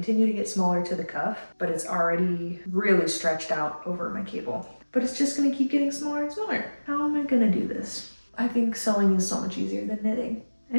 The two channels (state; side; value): inverted; both; correlation -1.00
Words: to get smaller to the cuff, but it's already really stretched out over my cable. But it's just gonna keep getting smaller and smaller. How am I gonna do this? I think sewing is so much easier than knitting.